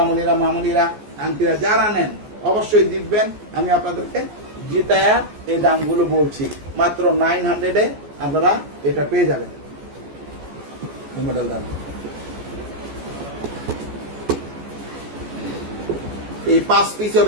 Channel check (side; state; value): left; late; 14 ms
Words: মামনিরা, আন্টিরা যারা নেন অবশ্যই জিতবেন। আমি আপনাদেরকে জিতায়া এই দামগুলো বলছি, মাত্র 900-এ আপনারা এটা পেয়ে যাবেন। মডেল দাম এই 5 পিস